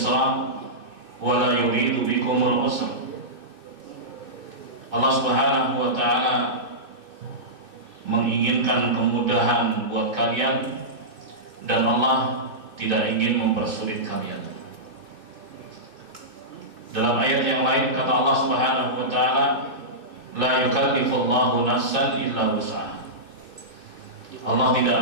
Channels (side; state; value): left; late; 2.7 ms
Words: wa la yuridu bikumul usra. Allah Subhanahu wa ta'ala menginginkan kemudahan buat kalian dan Allah tidak ingin mempersulit kalian. Dalam ayat yang lain kata Allah Subhanahu wa ta'ala, la yukallifullahu nafsan illa wus'aha. Allah tidak